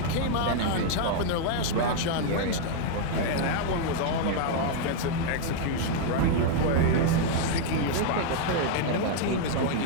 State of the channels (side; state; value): both; different; correlation 0.00